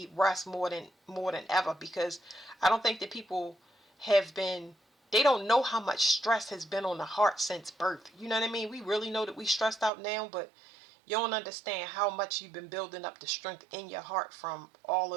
rest more than ever, because I don't think that people they don't know how much stress has been on the heart since birth. You know what I mean? We really know that we stressed out now, but you don't understand how much you've been building up the strength in your heart from all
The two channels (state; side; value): drops out; left; at 9.9 s